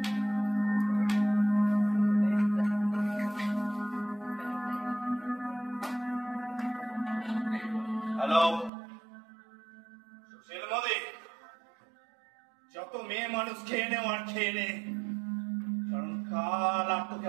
হ্যালো, সুশীল মোদি, যত মেয়ে মানুষ খেয়ে নে আর খেয়ে নে, কারণ কাল আর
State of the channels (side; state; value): left; drops out; at 8.7 s